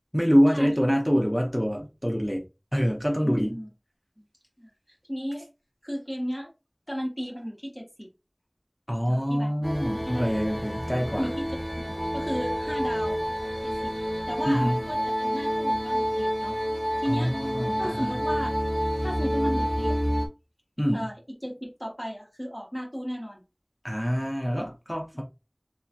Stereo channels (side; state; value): both; identical; correlation 1.00